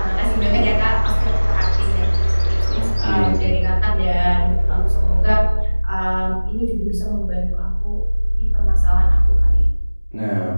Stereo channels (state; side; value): inverted; both; correlation -1.00